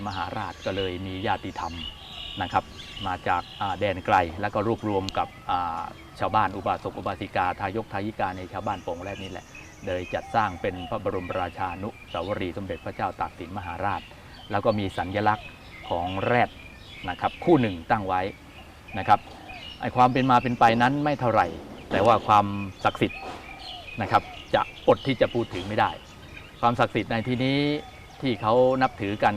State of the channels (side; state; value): both; identical; correlation 1.00